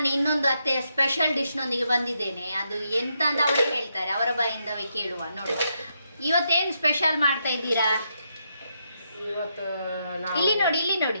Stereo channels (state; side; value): inverted; both; correlation -0.80